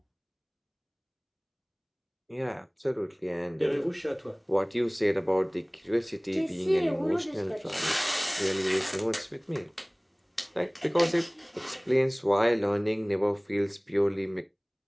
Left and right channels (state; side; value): identical; both; correlation 1.00